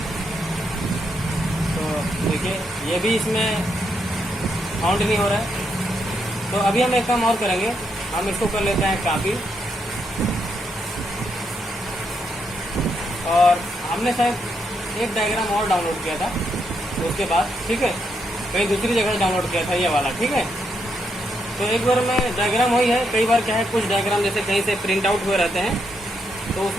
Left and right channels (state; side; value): normal; both; correlation 0.79